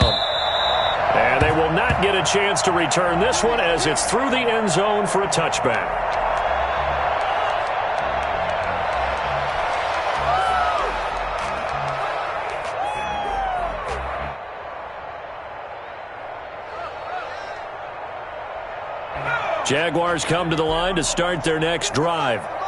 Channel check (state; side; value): identical; both; correlation 1.00